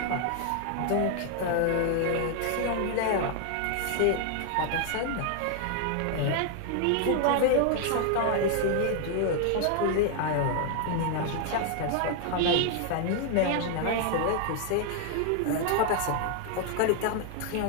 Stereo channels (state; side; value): different; both; correlation 0.00